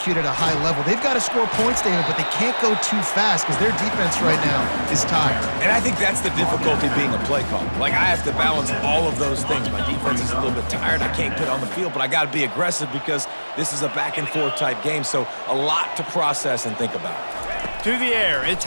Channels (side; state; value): both; inverted; correlation -1.00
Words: at a high level. They've got to score points, David, but they can't go too fast because their defense right now is tired. And I think that's the difficulty being a play caller. Like, I have to balance all of those things. My defense is a little bit tired. I can't get on the field, but I got to be aggressive because this is a back-and-forth type game, so a lot to process and think about. To the air, it's